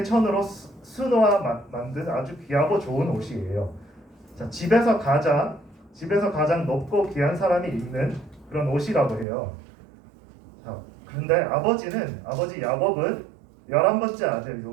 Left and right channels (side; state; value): left; drops out; at 9.2 s